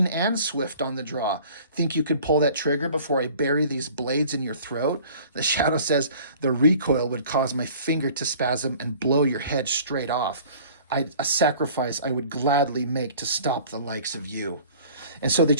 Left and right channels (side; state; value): both; inverted; correlation -0.49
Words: and swift on the draw. Think you could pull that trigger before I bury these blades in your throat? The Shadow says, the recoil would cause my finger to spasm and blow your head straight off. A sacrifice I would gladly make to stop the likes of you. And so they